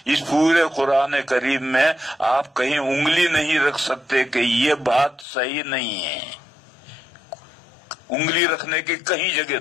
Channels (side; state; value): right; drops out; at 5.2 s